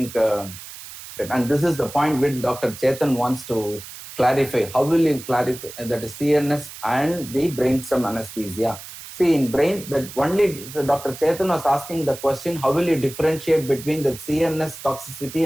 and this is the point which Dr. Chetan wants to clarify. How will you clarify that is CNS and the brainstem anesthesia? See, in brain, that only so Dr. Chetan was asking the question, how will you differentiate between the CNS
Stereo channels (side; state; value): right; noise; hiss, 14 dB below the sound